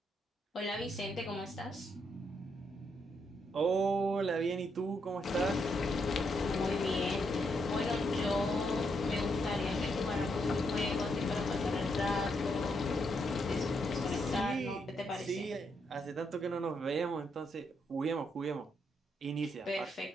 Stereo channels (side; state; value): both; normal; correlation 0.78